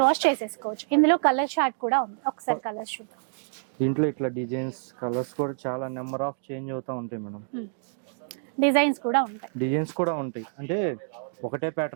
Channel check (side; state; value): left; silent; digital silence